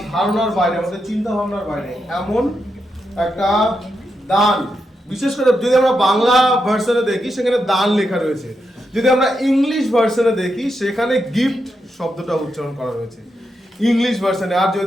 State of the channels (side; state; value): both; normal; correlation 0.85